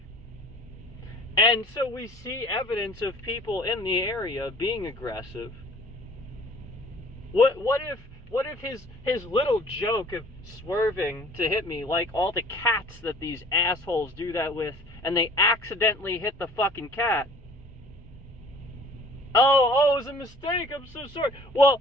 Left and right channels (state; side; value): normal; both; correlation 0.51